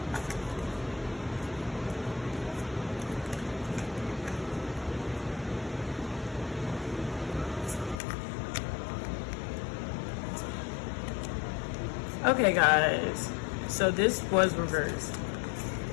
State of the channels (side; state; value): right; drops out; at 8.0 s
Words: Okay, guys. So this was reversed.